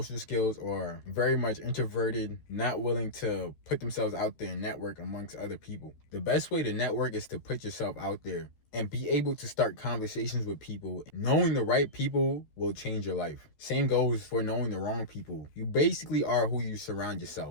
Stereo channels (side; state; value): right; late; 13 ms